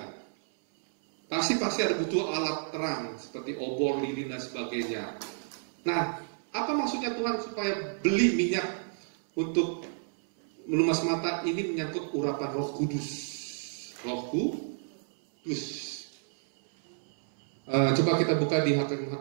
Pasti ada butuh alat terang seperti obor, lilin dan sebagainya. Nah, apa maksudnya Tuhan supaya beli minyak untuk melumas mata? Ini menyangkut urapan Roh Kudus. Roh Kudus. Coba kita buka di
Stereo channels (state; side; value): silent; left; 58 dB below the other